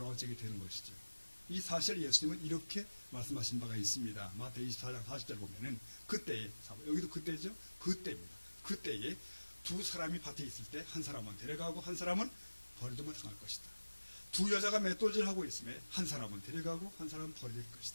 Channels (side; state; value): both; inverted; correlation -1.00